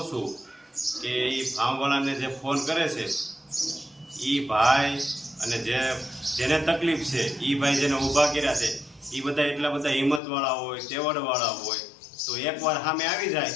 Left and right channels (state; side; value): drops out; right; at 10.2 s